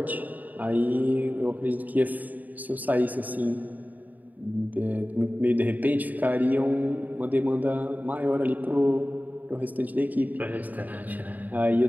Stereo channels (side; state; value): left; late; 0.081 ms